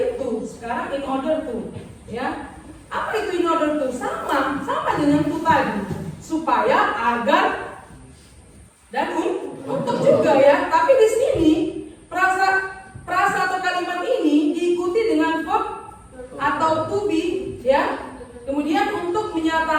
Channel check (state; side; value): identical; both; correlation 1.00